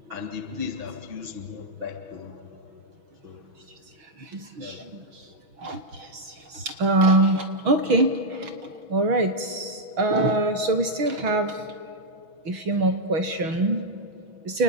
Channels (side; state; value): left; late; 6.5 ms